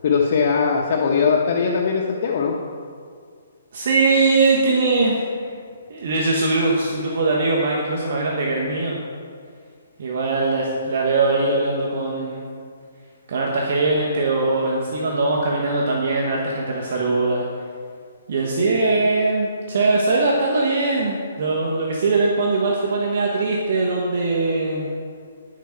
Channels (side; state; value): both; inverted; correlation -0.63